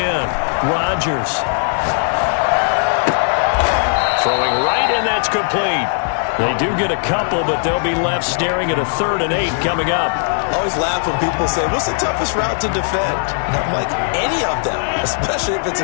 Rodgers. Throwing right, and that's complete. They do get a couple, but they'll be left staring at a 3rd and 8 coming up. I always laugh when people say, what's the toughest route to defend? And I'm like, any of them, especially if it's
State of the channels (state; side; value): silent; right; digital silence